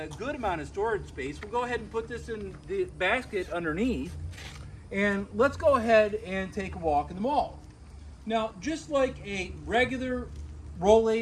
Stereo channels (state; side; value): identical; both; correlation 1.00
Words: good amount of storage space. We'll go ahead and put this in the basket underneath, and let's go ahead and take a walk in the mall. Now, just like a regular